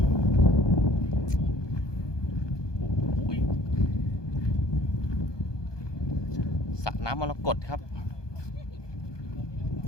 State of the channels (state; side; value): late; right; 1.2 ms